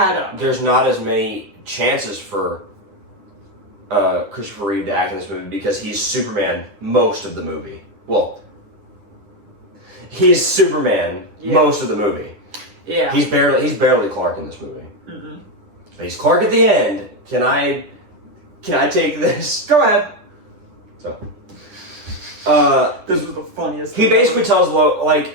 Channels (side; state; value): left; late; 10 ms